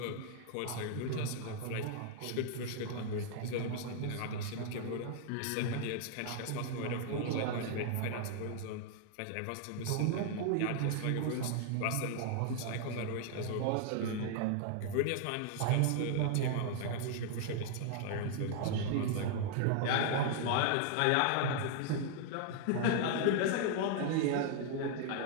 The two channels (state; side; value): different; both; correlation 0.00